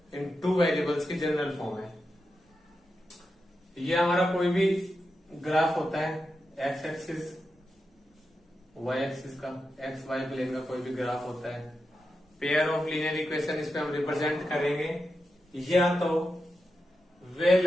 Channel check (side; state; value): both; normal; correlation 0.89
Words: in 2 variables की जनरल फॉर्म है। ये हमारा कोई भी ग्राफ होता है, एक्स एक्सिस वाई एक्सिस का, एक्स वाई प्लेन का कोई भी ग्राफ होता है, पेयर ऑफ लीनियर इक्वेशन इस पे हम रिप्रेजेंट करेंगे। या तो वे